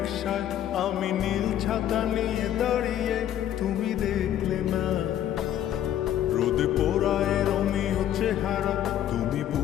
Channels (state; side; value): quieter; right; 11.2 dB